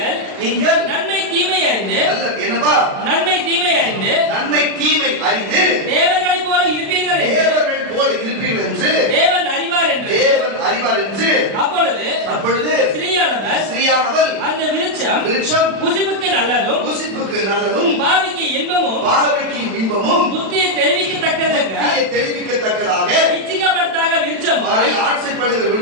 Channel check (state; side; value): late; left; 36 ms